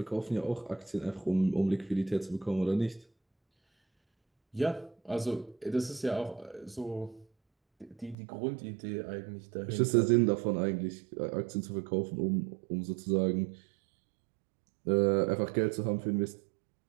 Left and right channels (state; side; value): drops out; left; at 8.2 s